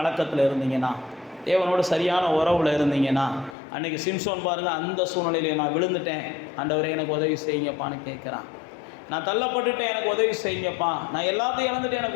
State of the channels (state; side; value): drops out; right; at 3.6 s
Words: இருந்தீங்கன்னா, தேவனோடு சரியான உறவில் இருந்தீங்கன்னா, அன்றைக்கி சிம்சோன் பாருங்கள், அந்த சூழ்நிலையிலே நான் விழுந்துட்டேன், ஆண்டவரே எனக்கு உதவி செய்யுங்கப்பான்னு கேட்குறான். நான் தள்ளப்பட்டுட்டேன், எனக்கு உதவி செய்யுங்கப்பா, நான் எல்லாத்தையும் இழந்துட்டேன்,